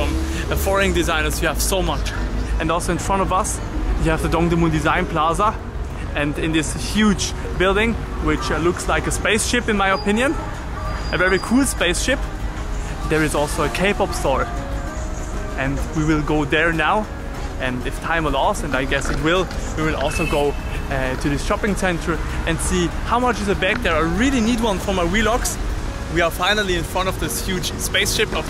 foreign designers. You have so much. And also in front of us you have the Dongdaemun Design Plaza, and in this huge building, which looks like a spaceship in my opinion, a very cool spaceship, there is also a K-pop store, and we will go there now. And if time allows, and I guess it will, we will also go to the shopping center and see how much is a bag there. I really need one for my vlogs. We are finally in front of this huge spaceship of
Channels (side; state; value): both; identical; correlation 1.00